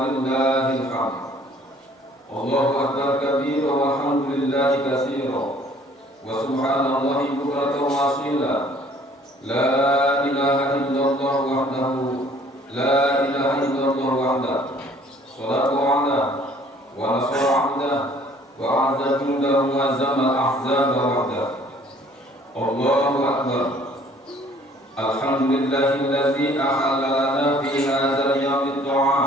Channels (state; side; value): normal; both; correlation 0.56